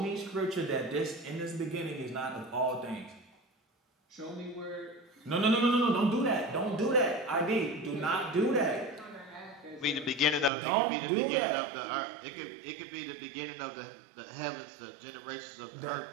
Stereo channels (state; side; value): drops out; left; at 10.5 s